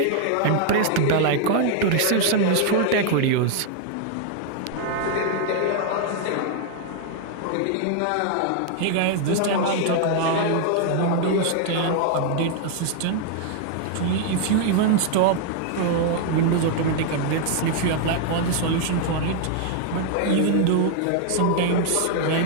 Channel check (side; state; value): both; different; correlation 0.00